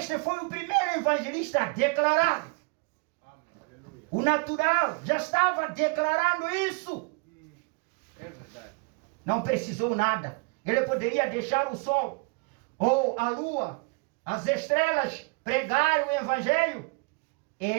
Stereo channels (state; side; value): quieter; left; 30.9 dB